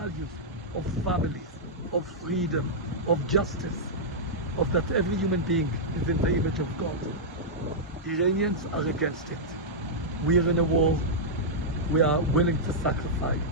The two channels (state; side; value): normal; both; correlation -0.09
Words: of families, of freedom, of justice, of that every human being is in the image of God. Iranians are against it. We are in a war. We are willing to sacrifice